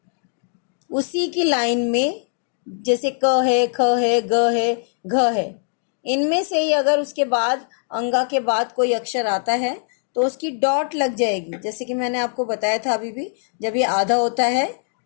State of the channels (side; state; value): right; silent; digital silence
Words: उसी की लाइन में। जैसे क है, ख है, ग है, घ है, इनमें से ही अगर उसके बाद अंगा के बाद कोई अक्षर आता है तो उसकी डॉट लग जाएगी। जैसे कि मैंने आपको बताया था अभी भी, जब ये आधा होता है,